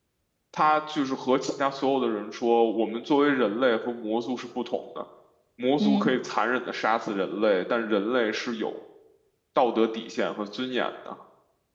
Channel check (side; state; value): both; identical; correlation 1.00